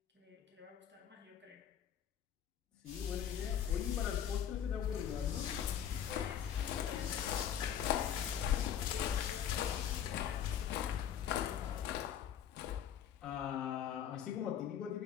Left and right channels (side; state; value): right; quieter; 9.4 dB